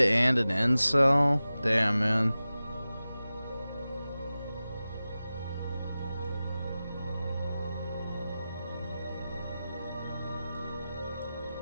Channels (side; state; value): both; inverted; correlation -0.95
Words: an incel? Damn, man.